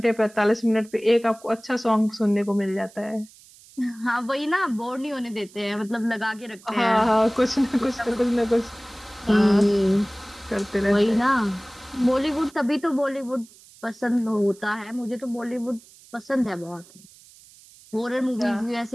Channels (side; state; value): right; noise; hiss, 24 dB below the sound